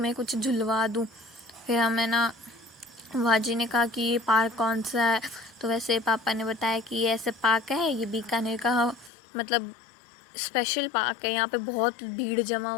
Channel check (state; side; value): drops out; right; at 9.1 s